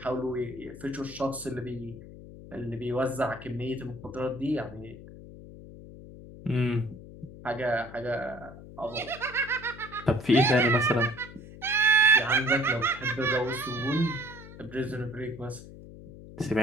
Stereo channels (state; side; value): noise; left; hum, 16 dB below the sound